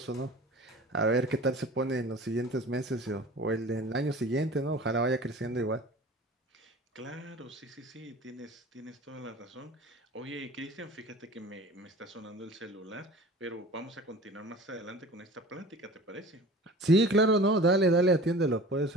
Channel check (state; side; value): normal; both; correlation 0.41